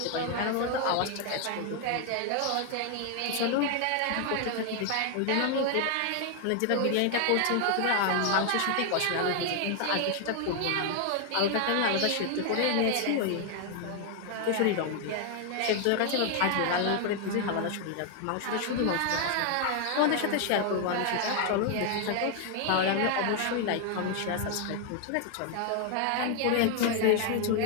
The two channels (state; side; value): different; both; correlation 0.00